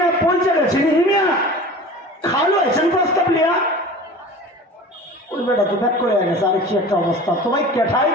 পৌঁছে গেছে হিমিয়া খালু আছেন প্রস্তাব লিয়া। ওই বেটা তো ব্যাক করে গেছে, আর কি একটা অবস্থা। তোমায়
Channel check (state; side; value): normal; both; correlation 0.38